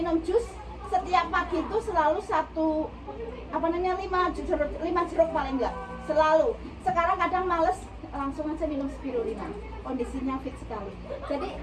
jus setiap pagi itu selalu 5 jeruk paling enggak selalu. Sekarang kadang males, langsung aja minum spirulina, kondisinya fit sekali. Jadi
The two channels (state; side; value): identical; both; correlation 1.00